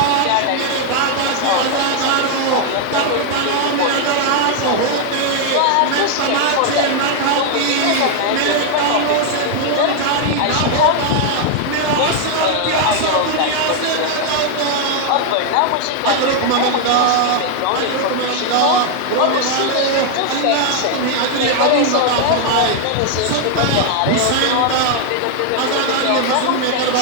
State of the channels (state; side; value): different; both; correlation 0.00